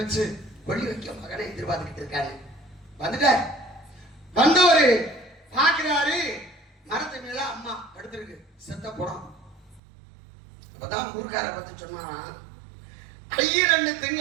கொள்ளி வைக்க மகனை எதிர்பார்த்துக்கிட்டு இருக்காரு. வந்துட்டார். வந்தவரு பாக்குறாரு, மரத்து மேல அம்மா படுத்திருக்கு, செத்த படம். அப்பதான் ஊர்க்கார பார்த்து சொன்னாராம், 2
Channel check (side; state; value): left; drops out; at 9.8 s